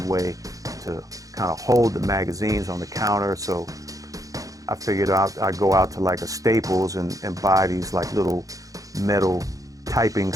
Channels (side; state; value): left; late; 0.17 ms